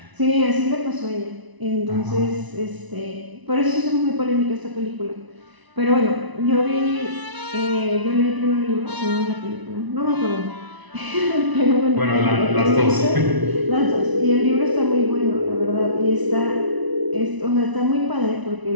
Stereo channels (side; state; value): left; late; 1.0 ms